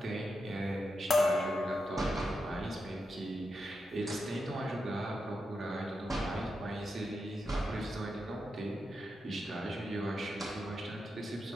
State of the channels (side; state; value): both; normal; correlation 0.86